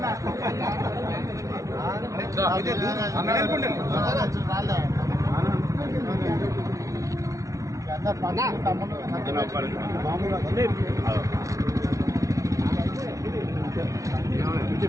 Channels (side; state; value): left; late; 0.16 ms